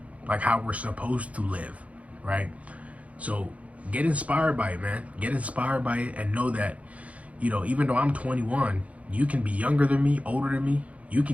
like how we're supposed to live, right? So get inspired by it, man. Get inspired by it and know that, you know, even though I'm 21, you can be younger than me, older than me. You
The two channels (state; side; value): late; left; 0.066 ms